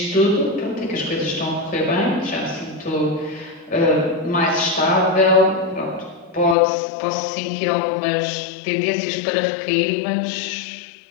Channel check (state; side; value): drops out; right; at 6.6 s